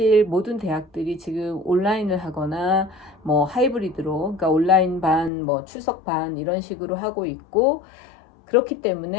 모든 대학들이 지금 온라인을 하거나 뭐 하이브리드로, 그러니까 온라인 반, 뭐 출석 반 이런 식으로 하고 있고, 그렇기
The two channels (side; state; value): right; drops out; at 5.3 s